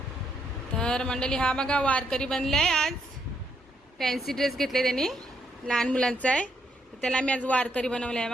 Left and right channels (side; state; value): both; normal; correlation 0.76